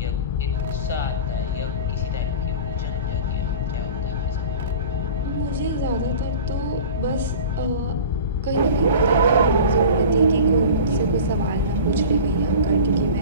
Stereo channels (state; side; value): inverted; both; correlation -0.37